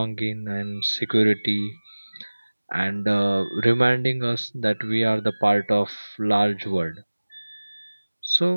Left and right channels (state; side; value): inverted; both; correlation -1.00